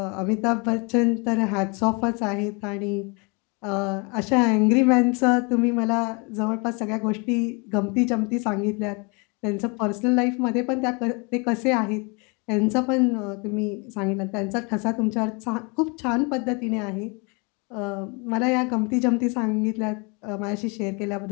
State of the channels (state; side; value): quieter; right; 31.2 dB